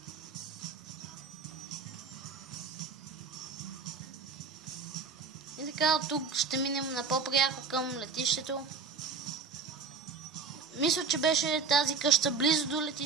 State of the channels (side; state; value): left; quieter; 5.1 dB